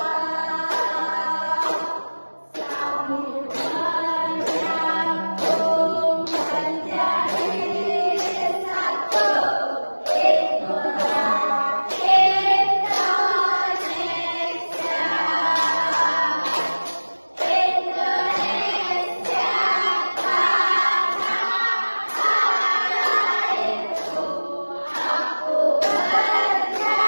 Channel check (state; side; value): inverted; both; correlation -1.00